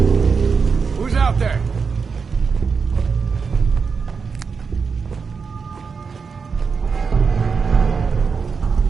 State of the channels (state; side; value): quieter; left; 5.4 dB